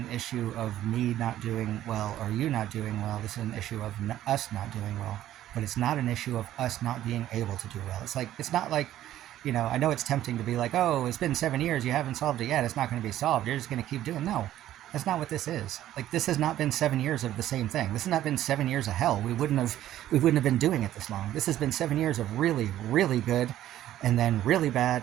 issue of me not doing well or you not doing well. This is an issue of us not doing well. But it's not an issue of us not being able to do well. It's not like, I know it's tempting to be like, oh, it's been 7 years, you haven't solved it yet, it's not going to be solved, you're just going to keep doing. No, that's not what this is. Like, this has not been 7 years of the same thing. This has not been 7 years of hell. We wouldn't have been doing it this long. This has been 7 years of really, really good, and then really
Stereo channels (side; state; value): left; quieter; 12.9 dB